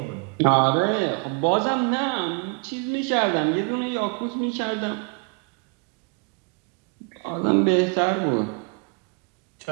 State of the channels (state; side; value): quieter; left; 33.4 dB